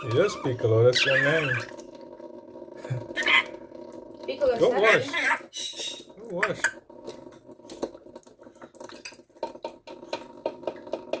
Yes, Piccolo, that's your name. Piccolo, Go stop. wash. Go wash.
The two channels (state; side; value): identical; both; correlation 1.00